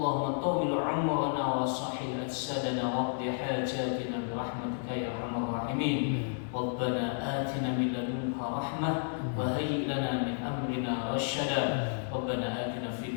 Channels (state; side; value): silent; right; digital silence